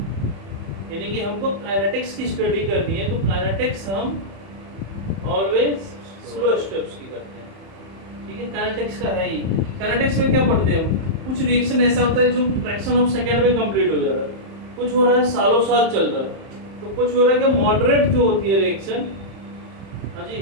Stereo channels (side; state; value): left; late; 31 ms